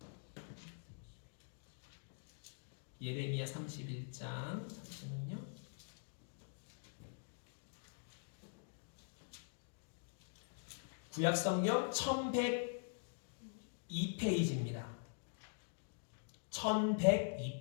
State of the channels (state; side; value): silent; right; digital silence